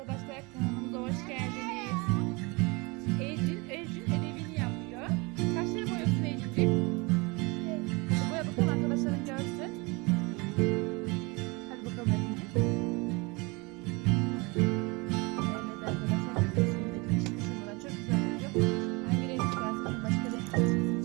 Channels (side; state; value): left; quieter; 27.2 dB